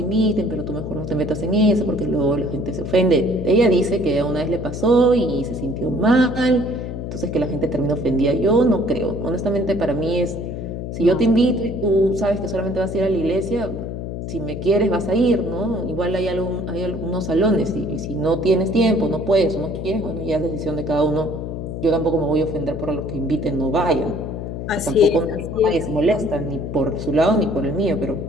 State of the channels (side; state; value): left; noise; hum, 6 dB below the sound